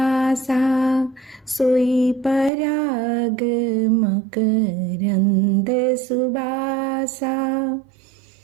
सोई पराग मकरंद सुबासा।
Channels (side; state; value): left; drops out; at 2.5 s